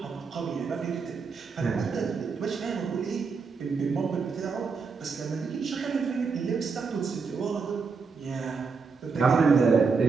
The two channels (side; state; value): left; quieter; 5.0 dB